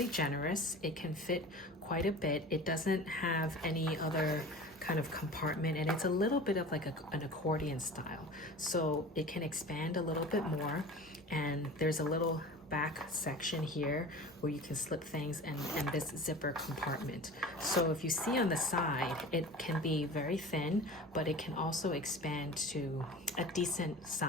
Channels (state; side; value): normal; both; correlation 0.38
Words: generous. It can fit quite a bit. It doesn't have any other kind of compartment, and it's a little bit of like an accordion style, so it can expand a little bit more. And there's a little back section here where you can slip things, and this zipper compartment. So if you see on the side, it can be very thin, but it can also expand to a decent